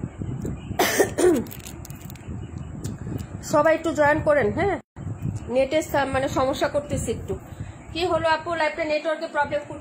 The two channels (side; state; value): both; identical; correlation 1.00